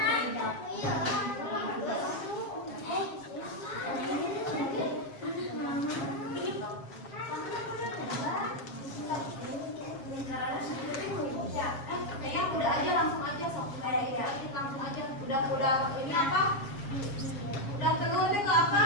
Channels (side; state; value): right; late; 7.4 ms